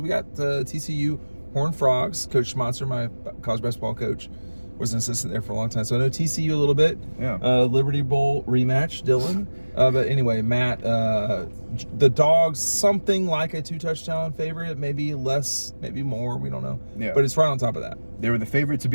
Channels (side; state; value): both; inverted; correlation -1.00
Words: we got TCU Horned Frogs. Coach Schmatzer, my college basketball coach, was an assistant there for a long time. So I know TCU a little bit. Yeah. Liberty Bowl rematch, Dylan. But anyway, Matt, the Dogs, something like a 2-touchdown favorite, maybe less, maybe more. We don't know. Yeah. But it's right on top of that. They were the favorite to